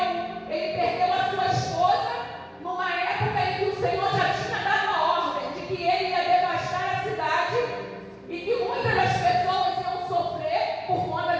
ele perdeu a sua esposa numa época em que o Senhor já tinha dado a ordem de que ele ia devastar a cidade, e que muitas das pessoas iam sofrer por conta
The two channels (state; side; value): identical; both; correlation 1.00